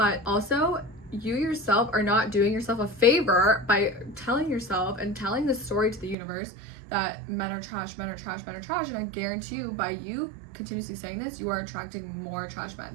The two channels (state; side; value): drops out; left; at 6.2 s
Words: also you yourself are not doing yourself a favor by telling yourself and telling the story to the universe that men are trash, men are trash, men are trash. And I guarantee you, by you continuously saying this, you are attracting more trash men.